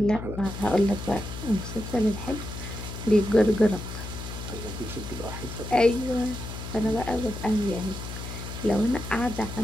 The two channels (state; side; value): noise; left; hum, 8 dB below the sound